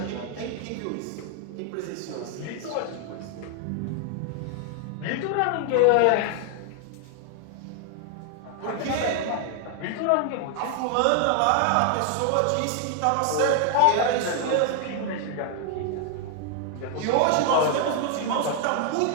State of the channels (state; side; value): different; both; correlation 0.00